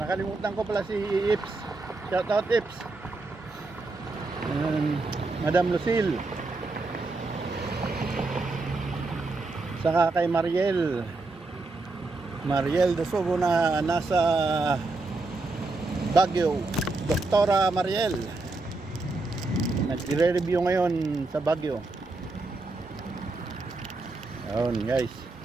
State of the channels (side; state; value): left; quieter; 3.4 dB